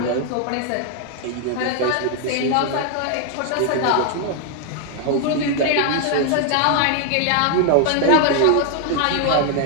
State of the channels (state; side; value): different; both; correlation 0.00